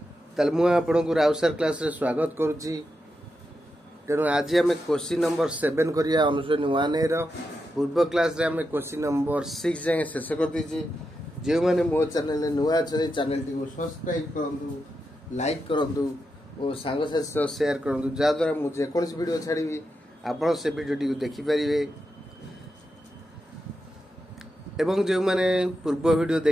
ताल मु आपन को राउत सर क्लास रे स्वागत करूची। तेणु आज आम क्वेश्चन नंबर 7 करिया अनुश्रेणी 1 रो। पूर्व क्लास रे आम क्वेश्चन नंबर 6 जाए शेष कर दीजिए। जो मैंने मो चैनल नुआ अच्छे चैनल टी सब्सक्राइब करूँ, लाइक करूँ और सांगसाथी शेयर करूँ, जहाद्वारा मुझे जेकोसी वीडियो छाड़ी आप से वीडियो टी देखिपारे। एवं जो मैंने पूर्व वीडियो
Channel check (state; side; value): normal; both; correlation 0.87